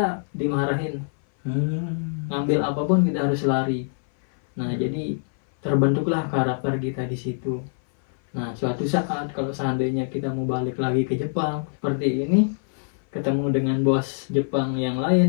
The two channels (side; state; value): right; silent; 60 dB below the other